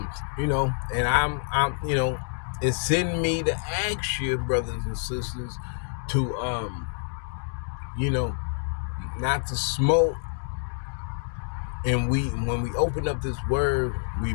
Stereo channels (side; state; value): right; silent; digital silence